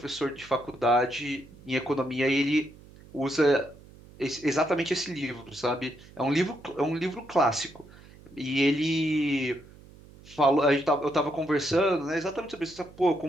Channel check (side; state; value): right; noise; hum, 22 dB below the sound